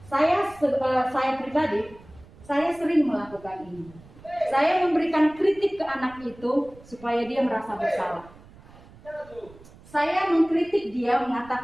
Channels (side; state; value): right; noise; rumble, 23 dB below the sound